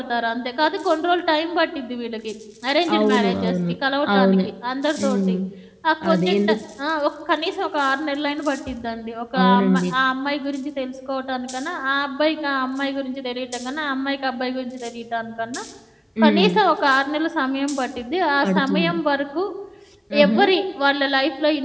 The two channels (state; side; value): identical; both; correlation 1.00